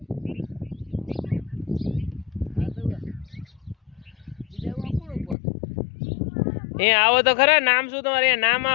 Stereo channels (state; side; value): drops out; right; at 5.4 s